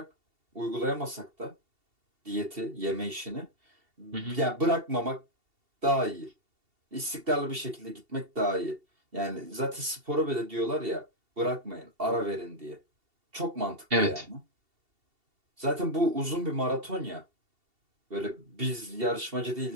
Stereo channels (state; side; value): late; left; 2.7 ms